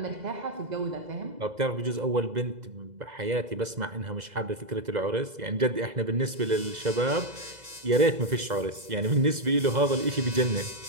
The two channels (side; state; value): left; late; 2.0 ms